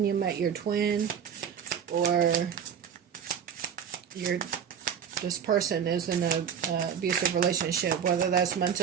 you met your twin, or this person is in an abusive relationship, whether that's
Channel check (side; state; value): left; quieter; 8.0 dB